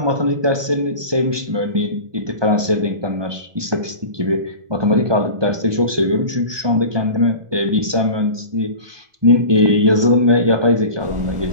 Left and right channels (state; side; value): late; left; 1.2 ms